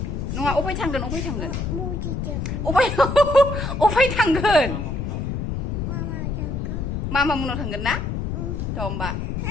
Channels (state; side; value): noise; left; rumble, 2 dB below the sound